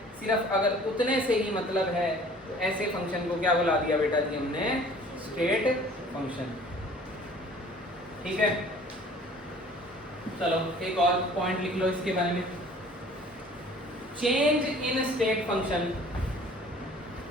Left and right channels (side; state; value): both; normal; correlation 0.50